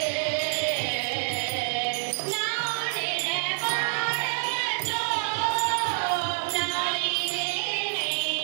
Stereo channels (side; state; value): left; silent; digital silence